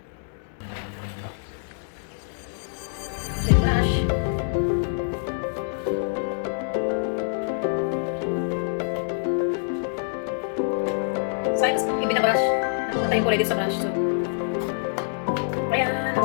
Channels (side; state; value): right; silent; digital silence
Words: Then brush. Sayang kasi yung binabrush. Napupunta yung kulay dito sa brush. So, ayan,